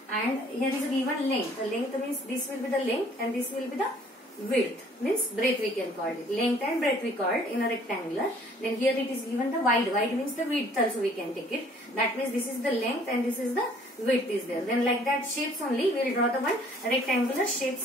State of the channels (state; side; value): normal; both; correlation 0.57